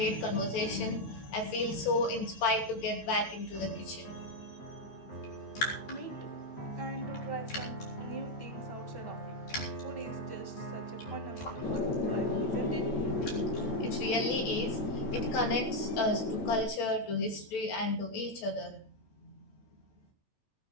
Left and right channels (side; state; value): right; late; 8.9 ms